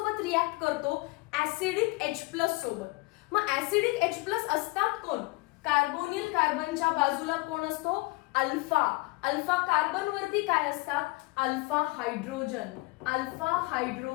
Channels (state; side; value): quieter; right; 24.7 dB